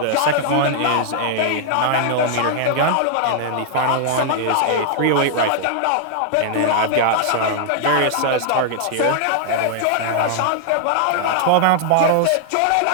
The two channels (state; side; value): different; both; correlation -0.01